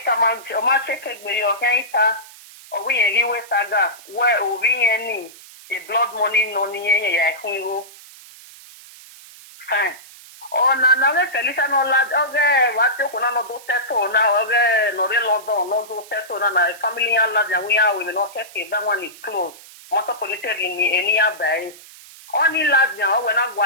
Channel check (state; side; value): noise; right; hiss, 20 dB below the sound